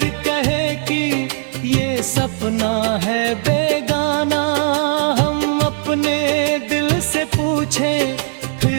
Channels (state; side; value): silent; left; 56 dB below the other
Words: कहे कि ये सपना है बेगाना। हम अपने दिल से पूछें